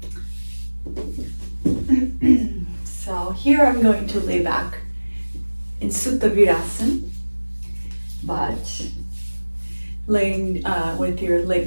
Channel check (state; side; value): inverted; both; correlation -1.00